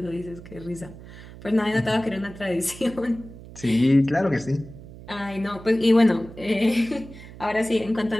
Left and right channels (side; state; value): right; noise; hum, 16 dB below the sound